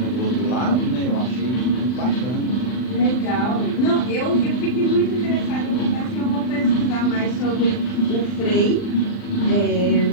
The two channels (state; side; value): late; right; 40 ms